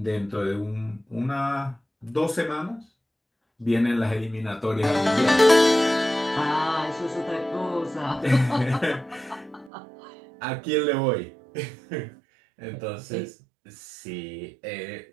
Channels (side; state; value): left; drops out; at 9.7 s